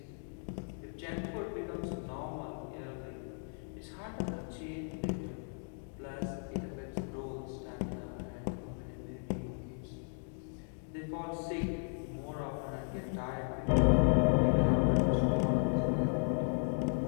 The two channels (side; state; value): right; silent; 54 dB below the other